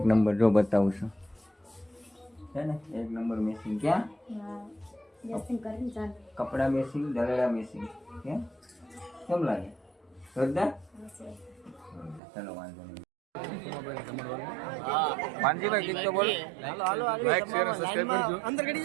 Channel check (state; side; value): drops out; left; at 12.2 s